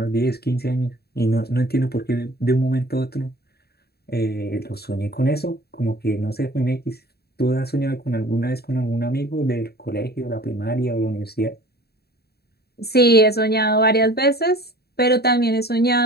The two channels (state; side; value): late; right; 0.46 ms